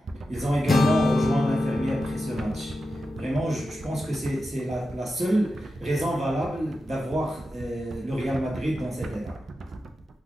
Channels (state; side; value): normal; both; correlation 0.90